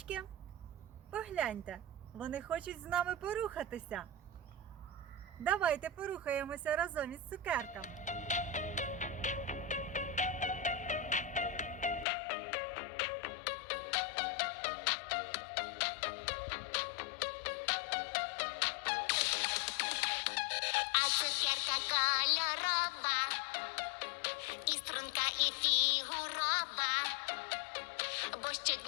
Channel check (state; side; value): drops out; right; at 12.1 s